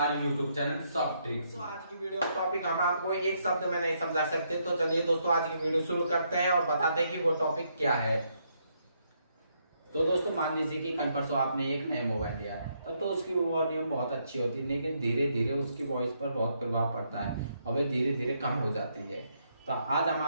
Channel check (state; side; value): inverted; both; correlation -0.75